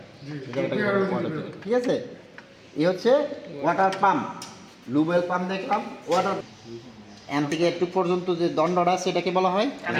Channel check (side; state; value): both; identical; correlation 1.00